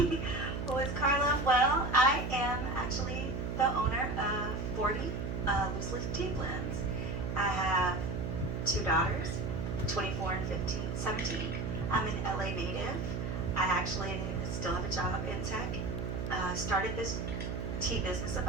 is Karla? Well, I am actually the owner of 40 Loose Leaf Tea Blends. I have two daughters, 24 and 17. I'm an LA native. I actually still have a job in tech. Started this tea business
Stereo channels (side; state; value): right; noise; hum, 3 dB below the sound